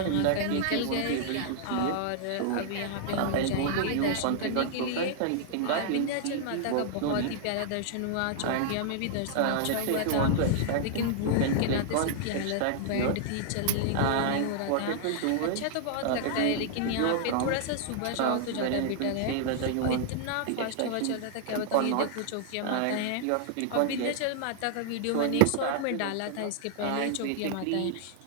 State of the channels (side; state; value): both; different; correlation -0.01